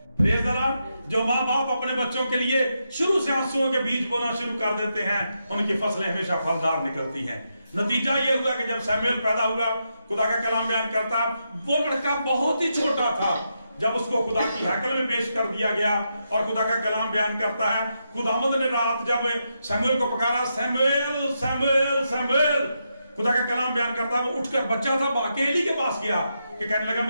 Praise the Lord. जो माँ बाप अपने बच्चों के लिए शुरू से आंसुओं के बीज बोना शुरू कर देते हैं उनकी फसलें हमेशा फलदार निकलती हैं। नतीजा यह हुआ कि जब सैमुएल पैदा हुआ, खुदा का कलाम बयान करता है वो लड़का बहुत ही छोटा था जब उसको खुदा की हैकल में पेश कर दिया गया। और खुदा का कलाम बयान करता है खुदावंद ने रात जब सैमुएल को पुकारा, सैमुएल सैमुएल सैमुएल, खुदा का कलाम बयान करता है वो उठकर, बच्चा था, अकेली के पास गया कि कहने लगा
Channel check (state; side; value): inverted; both; correlation -0.83